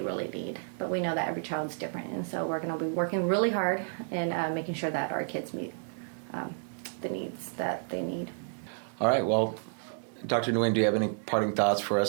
really need. But we know that every child's different, and so we're going to be working really hard in making sure that our kids meet the needs that they need. All right, well, Dr. Nguyen, do you have any parting thoughts for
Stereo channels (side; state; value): left; silent; digital silence